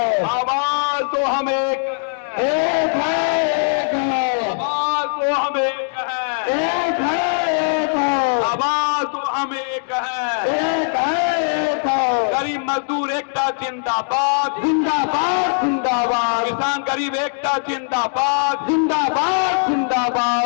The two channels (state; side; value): silent; right; digital silence